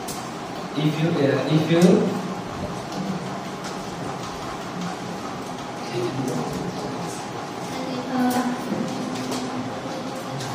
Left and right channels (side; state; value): both; identical; correlation 1.00